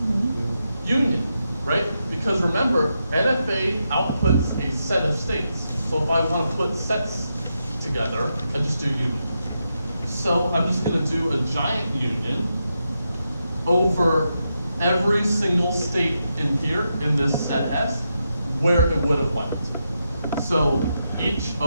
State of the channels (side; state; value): both; inverted; correlation -0.85